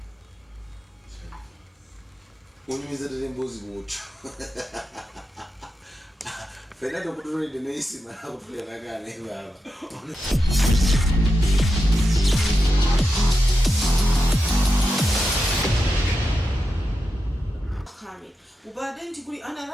Unyumizira mbuzi mucho. Fernando kutulinde neisi mara kutulia nakane baba. كامل. وبعدين تقولي أنا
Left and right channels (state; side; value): normal; both; correlation 0.88